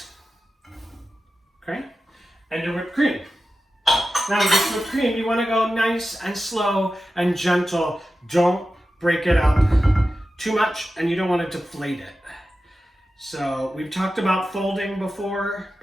okay, and your whipped cream. Now with this whipped cream, you want to go nice and slow and gentle. Don't break it up too much, and you don't want to deflate it. So we've talked about folding before,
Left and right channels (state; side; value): normal; both; correlation 0.93